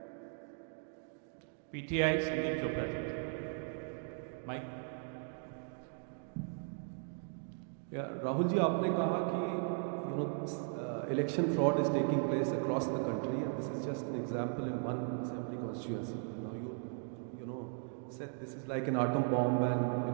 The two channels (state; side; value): silent; left; 53 dB below the other